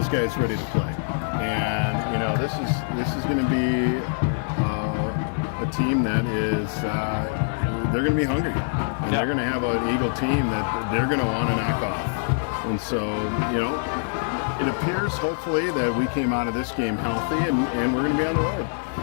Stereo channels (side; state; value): right; silent; digital silence